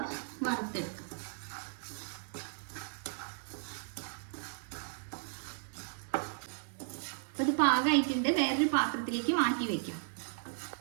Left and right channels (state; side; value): silent; left; 54 dB below the other